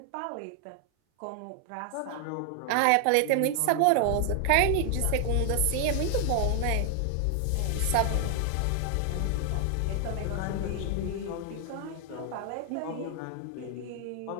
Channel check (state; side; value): different; both; correlation 0.00